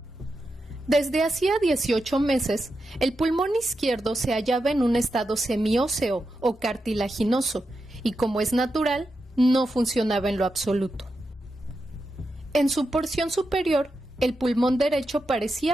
Desde hacía 18 meses, el pulmón izquierdo se hallaba en un estado semióseo o cartilaginoso y, como es natural, no funcionaba en lo absoluto. En su porción superior, el pulmón derecho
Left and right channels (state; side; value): normal; both; correlation 0.88